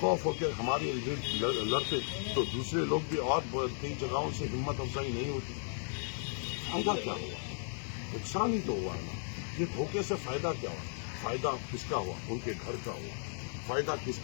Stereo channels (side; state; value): right; silent; digital silence